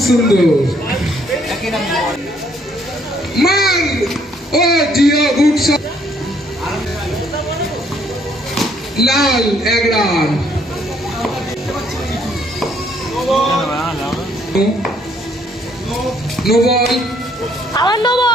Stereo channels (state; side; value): normal; both; correlation 0.66